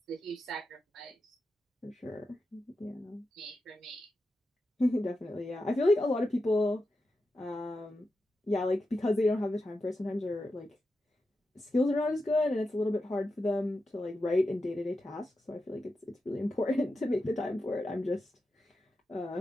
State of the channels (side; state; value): both; normal; correlation 0.89